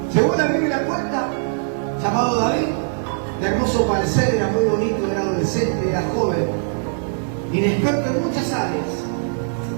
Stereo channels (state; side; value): silent; left; 59 dB below the other